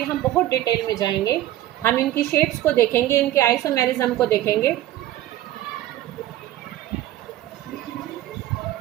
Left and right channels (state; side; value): quieter; left; 14.0 dB